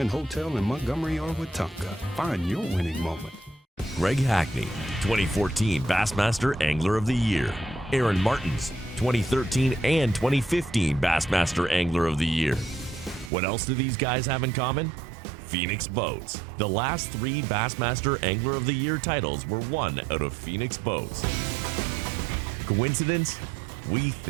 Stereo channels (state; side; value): drops out; left; at 13.3 s